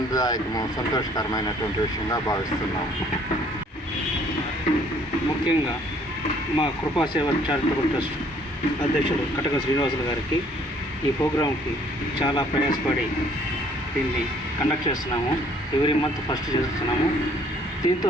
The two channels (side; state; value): both; normal; correlation 0.60